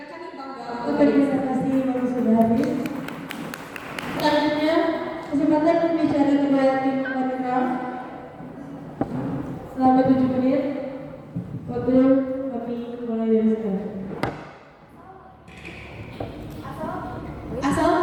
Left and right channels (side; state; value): both; identical; correlation 1.00